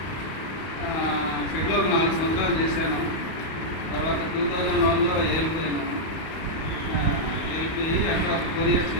షెడ్లో ఒక 4 సంవత్సరాలు చేశాను. తర్వాత 2001లో ఏఎల్పీ అయినాను. ఏఎల్పీ అక్కడ 4 years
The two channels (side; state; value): right; late; 31 ms